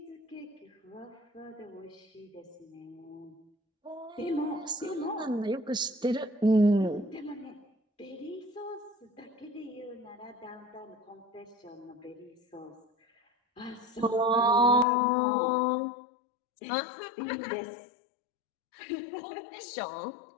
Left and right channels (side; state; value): right; drops out; at 14.9 s